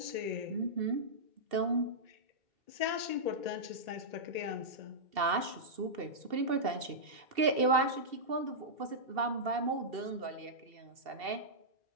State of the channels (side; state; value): left; late; 2.7 ms